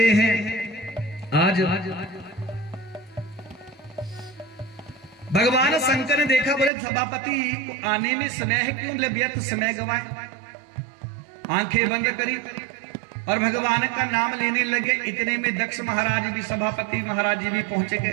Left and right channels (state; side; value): drops out; left; at 6.7 s